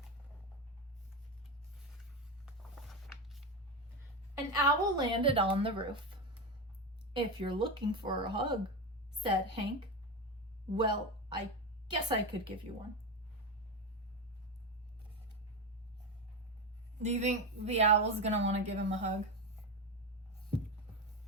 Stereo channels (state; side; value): normal; both; correlation 0.16